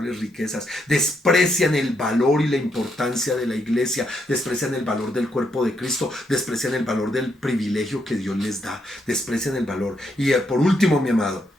riquezas. Desprecian el valor y la importancia de la iglesia, desprecian el valor del cuerpo de Cristo, desprecian el valor del privilegio que Dios les da, desprecian el valor. Y por último, mi amado,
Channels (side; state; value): both; normal; correlation 0.77